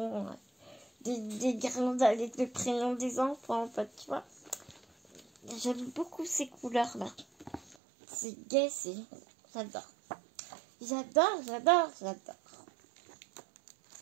Des guirlandes avec le prénom des enfants, en fait, tu vois. J'aime beaucoup ces couleurs-là. C'est gai, j'adore. J'adore.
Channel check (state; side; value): drops out; left; at 7.8 s